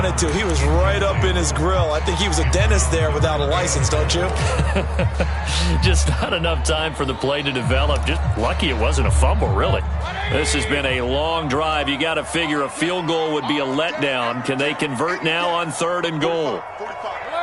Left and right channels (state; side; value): identical; both; correlation 1.00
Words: to. He was right up in his grill. I think he was a dentist there without a license, don't you? Just not enough time for the play to develop. Just lucky it wasn't a fumble, really. This has been a long drive. You got to figure a field goal would be a letdown. Can they convert now on 3rd and goal?